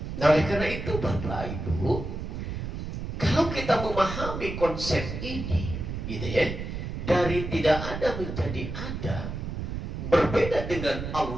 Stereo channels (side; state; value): right; noise; rumble, 6 dB below the sound